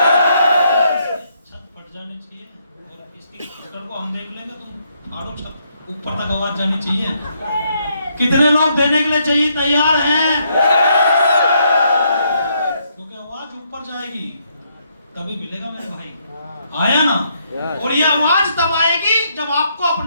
छत फट जानी चाहिए। इसकी स्पीकर को हम देख लेंगे, तुम फाड़ो छत, ऊपर तक आवाज जानी चाहिए। कितने लोग देने के लिए चाहिए तैयार हैं? क्योंकि आवाज ऊपर जाएगी तभी मिलेगा मेरे भाई। आया ना? और ये आवाज तब आएगी जब आपको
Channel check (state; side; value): inverted; both; correlation -0.74